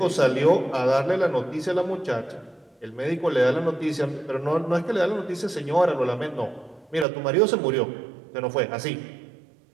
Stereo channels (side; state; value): left; drops out; at 7.1 s